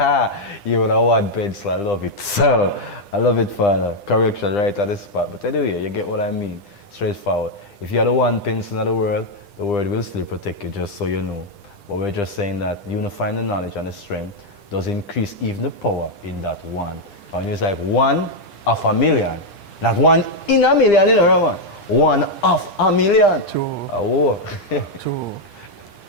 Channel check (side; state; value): right; late; 9.9 ms